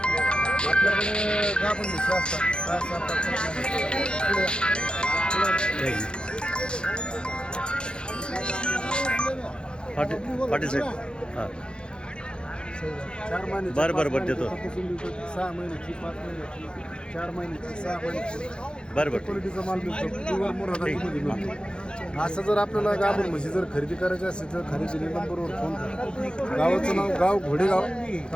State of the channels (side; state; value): right; late; 0.051 ms